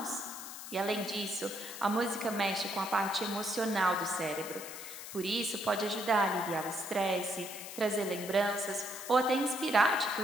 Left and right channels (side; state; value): left; noise; hiss, 11 dB below the sound